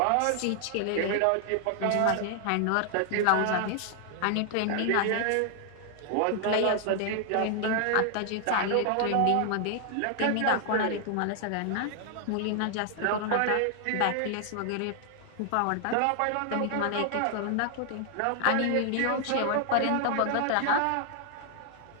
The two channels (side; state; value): both; different; correlation 0.00